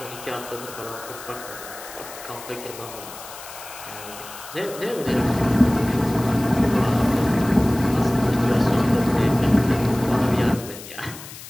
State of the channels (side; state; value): left; noise; hiss, 14 dB below the sound